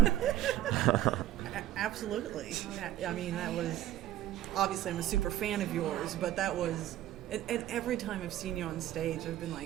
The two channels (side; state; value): left; quieter; 13.1 dB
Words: Absolutely. I mean, that was, obviously I'm a super fan of yours, but that was And every time I've seen you on stage, I've been